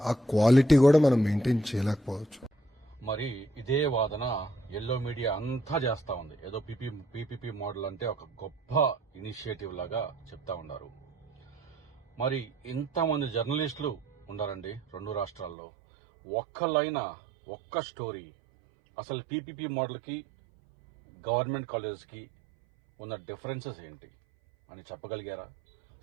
ఆ క్వాలిటీ కూడా మనం మెయింటైన్ చేయలేకపోవచ్చు. మరి ఇదే వాదన ఎల్లో మీడియా అంతా చేస్తా ఉంది. ఏదో పీపీపీ మోడల్ అంటే ఒక గొప్ప ఇనిషియేటివ్ లాగా చెప్తా ఉన్నారు. మరి ఇంతమంది జర్నలిస్టులు ఉండారండి 2 రాష్ట్రాల్లో. ఒక్క స్టోరీ అసలు పీపీపీ మోడల్కి గవర్నమెంట్ కాలేజెస్కి ఉన్న డిఫరెన్సెస్ ఏంటి అని చెప్పగలిగారా?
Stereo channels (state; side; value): drops out; left; at 15.6 s